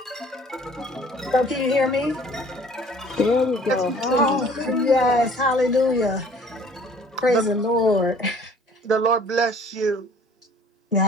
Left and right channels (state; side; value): normal; both; correlation 0.53